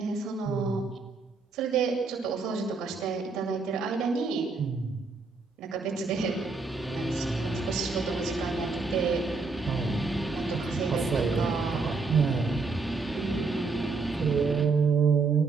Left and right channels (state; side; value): quieter; left; 4.2 dB